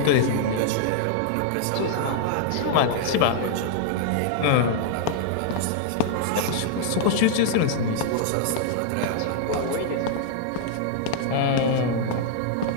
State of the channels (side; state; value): both; different; correlation -0.01